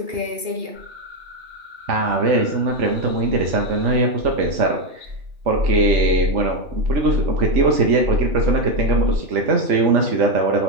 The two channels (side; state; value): left; late; 2.8 ms